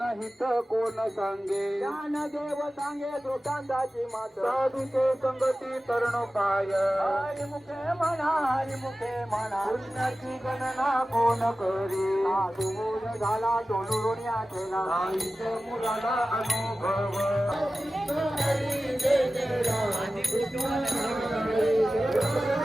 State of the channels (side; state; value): both; normal; correlation 0.95